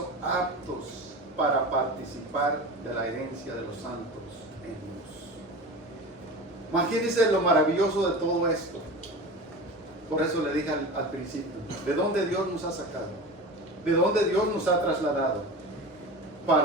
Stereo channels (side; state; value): both; normal; correlation 0.31